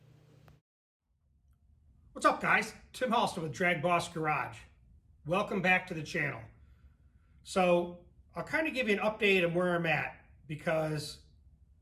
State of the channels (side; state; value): both; identical; correlation 1.00